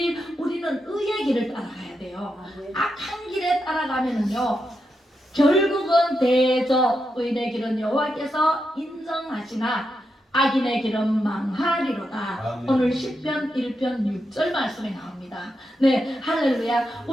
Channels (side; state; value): both; normal; correlation 0.86